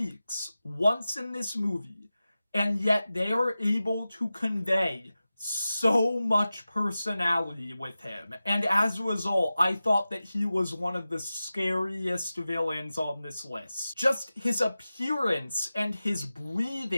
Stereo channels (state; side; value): inverted; both; correlation -0.95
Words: once in this movie, and yet they are able to convey so much personality with him. And as a result, I thought that he was one of the scariest villains on this list. Just his appearance and his